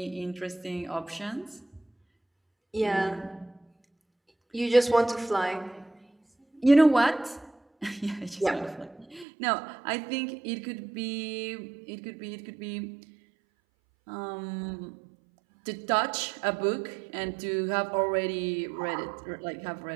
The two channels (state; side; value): drops out; left; at 9.2 s